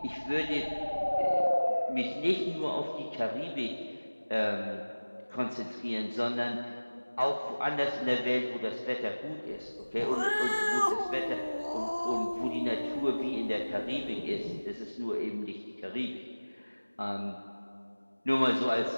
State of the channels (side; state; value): both; inverted; correlation -1.00